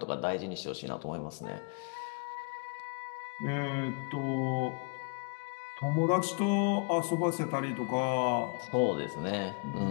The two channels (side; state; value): right; quieter; 35.9 dB